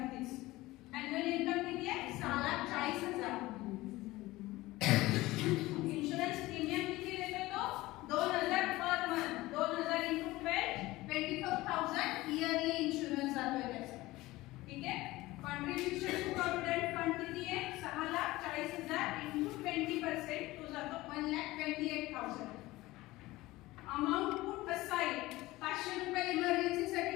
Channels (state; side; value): quieter; right; 18.8 dB